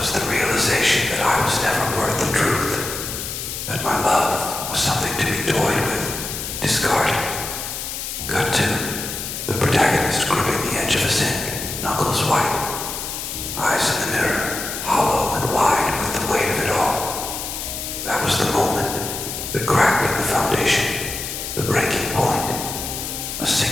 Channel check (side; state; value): left; noise; hiss, 6 dB below the sound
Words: the realization that I was never worth the truth. was the moment, the crack in the foundation, the breaking point. A